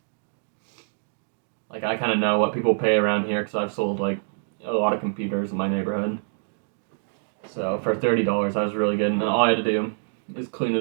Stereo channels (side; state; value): left; silent; digital silence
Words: Like I kind of know what people pay around here because I've sold like a lot of computers in my neighborhood. So for $30, that was really good. And all I had to do is clean